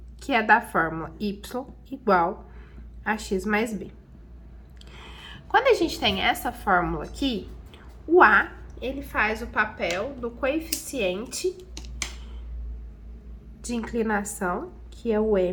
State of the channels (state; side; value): identical; both; correlation 1.00